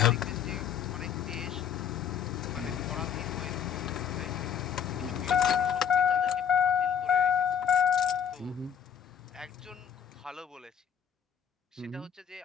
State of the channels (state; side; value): quieter; right; 8.2 dB